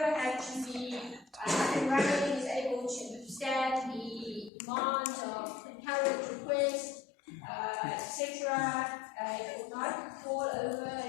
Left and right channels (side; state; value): right; drops out; at 4.5 s